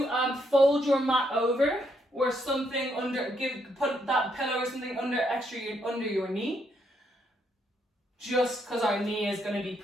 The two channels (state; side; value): normal; both; correlation 0.75